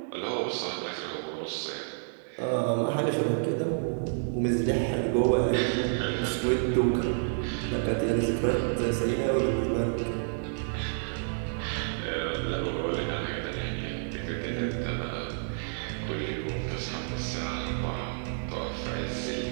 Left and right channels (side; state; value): left; silent; digital silence